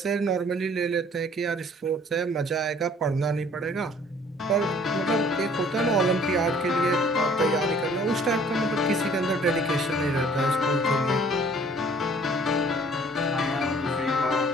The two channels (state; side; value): normal; both; correlation 0.55